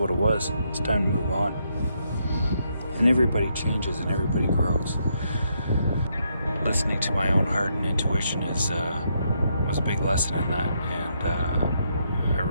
it was. It's time to move on. And everybody changes and everybody grows. Listening to my own heart and intuition was a big lesson in that, and I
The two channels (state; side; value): inverted; both; correlation -0.77